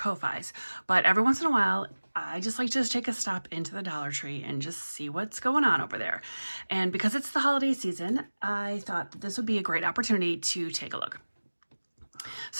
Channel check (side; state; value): both; inverted; correlation -1.00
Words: But every once in a while, I just like to just take a stop into the Dollar Tree and just see what's going on over there. And because it's the holiday season, I thought that this would be a great opportunity to take a look.